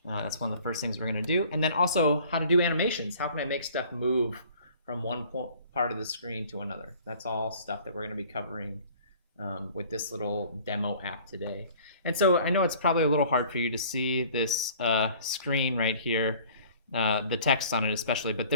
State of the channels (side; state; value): both; inverted; correlation -0.51